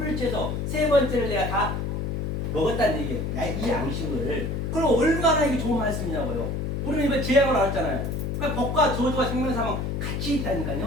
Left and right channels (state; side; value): noise; left; hum, 2 dB below the sound